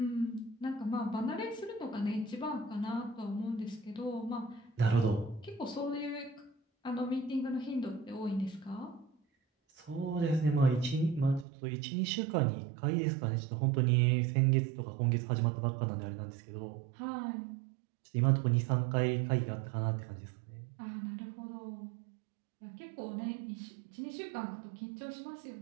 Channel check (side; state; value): left; drops out; at 11.5 s